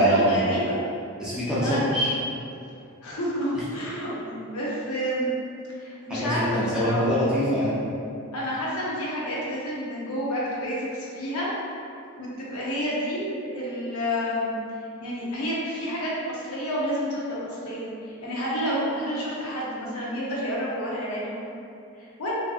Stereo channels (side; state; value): both; normal; correlation 0.16